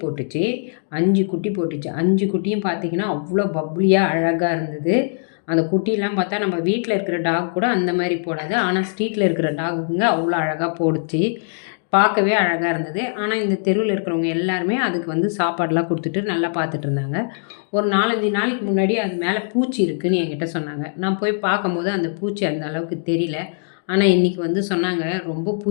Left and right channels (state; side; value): silent; right; digital silence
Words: போட்டுச்சு. 5 குட்டி போட்டுச்சு. 5 குட்டியும் பார்த்திங்கன்னா அவ்வளோ பப்ளியாக அழகாக இருந்தது. அந்த குட்டிலாம் பார்த்தா நம்ம வீட்டில் இருக்கிற டாக் கூட அந்த மாதிரி போடாது. ஆனால் ஸ்ட்ரீட்டில் இருக்கிற டாகுங்க அவ்வளோ அழகாக போடுச்சு. பார்க்கவே அழகாக இருந்தது. ஆனால் இந்த தெருவில் இருக்கிறவங்க எல்லாருமே அதுக்கு வந்து சாப்பாடெலாம் கொடுத்துட்டு நல்லா பார்த்துட்டு இருந்தாங்க. ஒரு 4-5 நாளைக்கு முன்னாடி அது மேலே பூச்சி இருக்குதுன்னு என்கிட்ட சொன்னாங்க. நான் போய் பார்க்கும்போது அந்த பூச்சி அந்த அளவுக்கு தெரியல. ஆனால் இன்றைக்கி வந்து சொன்னாங்க, ரொம்ப